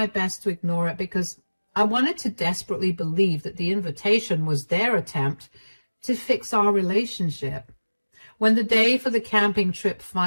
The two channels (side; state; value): both; inverted; correlation -1.00